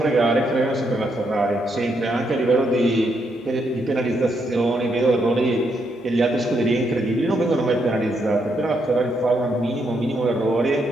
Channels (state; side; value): normal; both; correlation 0.78